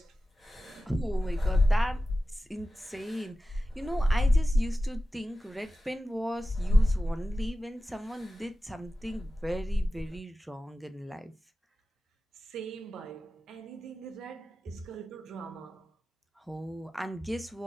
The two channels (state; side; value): normal; both; correlation 0.94